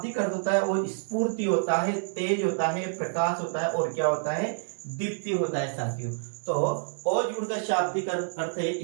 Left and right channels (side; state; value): left; silent; digital silence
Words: अर्थ होता है वो स्फूर्ति होता है, तेज होता है, प्रकाश होता है और क्या होता है? दीप्ति होता है साथियों। तो ओज गुण का शाब्दिक अर्थ है